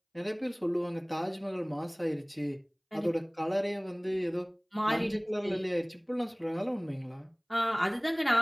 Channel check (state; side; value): identical; both; correlation 1.00